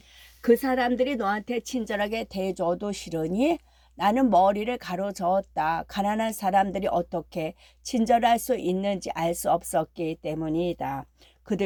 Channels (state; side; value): identical; both; correlation 1.00